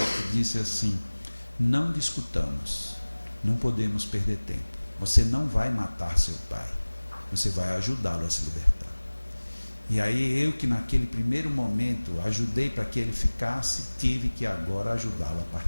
disse assim: não discutamos, não podemos perder tempo, você não vai matar seu pai, você vai ajudá-lo a se libertar. E aí eu, que naquele primeiro momento ajudei para que ele ficasse, tive que agora ajudá-lo a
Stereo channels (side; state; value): both; inverted; correlation -1.00